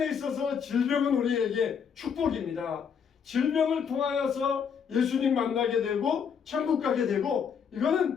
있어서 질병은 우리에게 축복입니다. 질병을 통하여서 예수님 만나게 되고 천국 가게 되고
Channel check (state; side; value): quieter; right; 6.9 dB